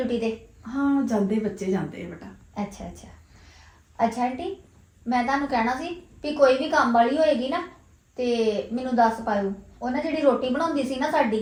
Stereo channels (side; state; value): both; identical; correlation 1.00